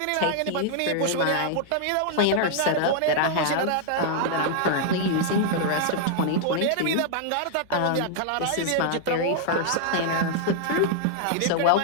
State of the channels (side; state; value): both; different; correlation -0.01